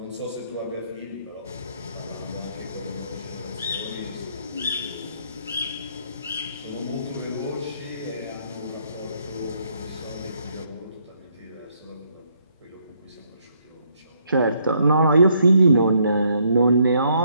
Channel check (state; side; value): inverted; both; correlation -0.70